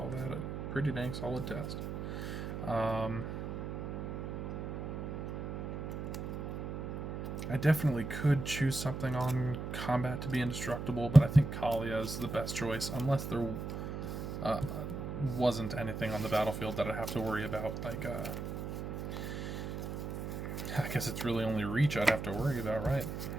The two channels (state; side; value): noise; right; hum, 5 dB below the sound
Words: that a pretty dang solid test. I definitely could choose something on combat to be indestructible, but I think Kaalia is the best choice, unless there wasn't anything on the battlefield that I'd have to worry about. Like, I guess it's really only Reach I'd have to worry about, right?